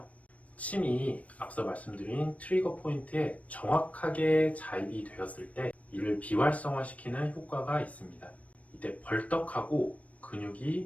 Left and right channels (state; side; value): late; right; 0.067 ms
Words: 침이 앞서 말씀드린 트리거 포인트에 정확하게 자입이 되었을 때 이를 비활성화시키는 효과가 있습니다. 이때 벌떡하고